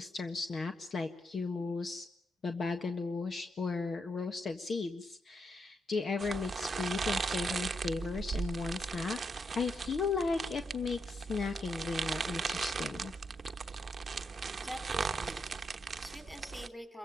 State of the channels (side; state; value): both; normal; correlation 0.81